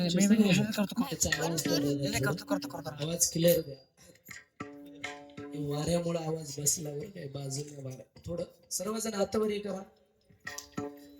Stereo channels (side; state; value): both; identical; correlation 1.00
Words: आवाज क्लिअर द्या. वाऱ्यामुळे आवाज बसला बरं काय बाजूला वारा. थोडं सर्वजण हातावरी करा.